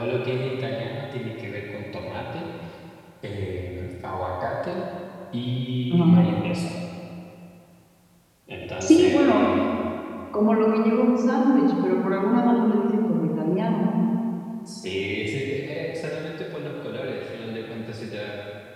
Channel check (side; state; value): both; identical; correlation 1.00